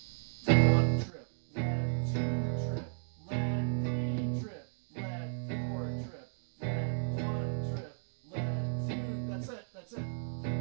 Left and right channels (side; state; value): left; silent; digital silence